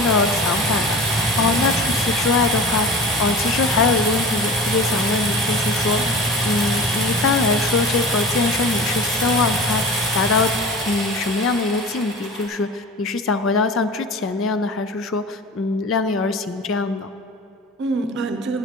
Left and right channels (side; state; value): both; normal; correlation 0.35